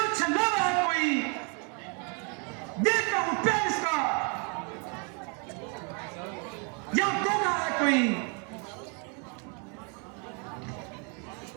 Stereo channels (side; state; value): left; quieter; 35.9 dB